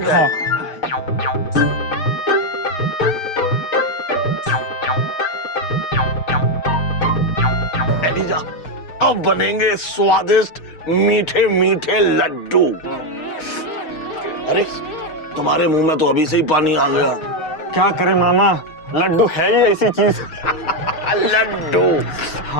है? एलिजा, अब बनेंगे स्वादिष्ट मीठे मीठे लड्डू। अरे तुम्हारे मुंह में तो अभी से ही पानी आ गया। क्या करें मामा, लड्डू है ही ऐसी चीज। लड्डू।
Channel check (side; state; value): right; late; 6.4 ms